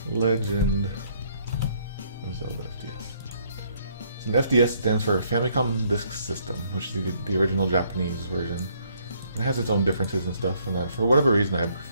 Legend of Zelda FDS. So an FDS stands for Famicom Disk System, which is the original Japanese version. It has its own differences and stuff, and for whatever reason I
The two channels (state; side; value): inverted; both; correlation -0.67